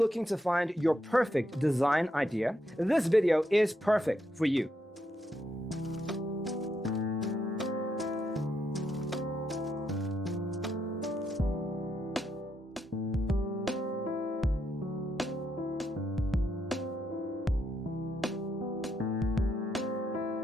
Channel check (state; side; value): normal; both; correlation 0.79